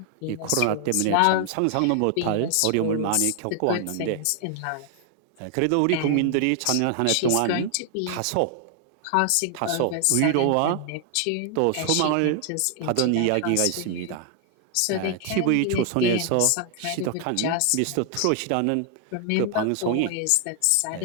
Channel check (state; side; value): different; both; correlation 0.00